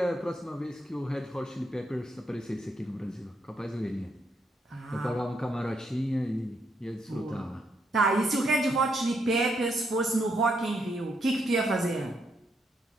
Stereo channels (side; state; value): both; normal; correlation 0.77